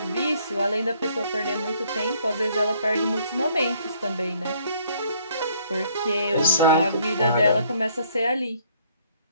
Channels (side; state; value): both; inverted; correlation -0.64